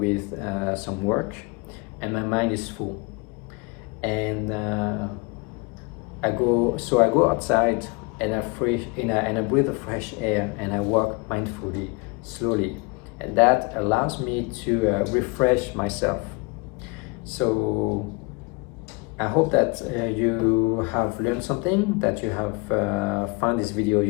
some work and my mind is full, and I go outside and I breathe the fresh air and I walk mindfully, slowly, and that allows me to refresh myself. So I hope that you have learned something, that you have found this video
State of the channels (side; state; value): right; quieter; 28.8 dB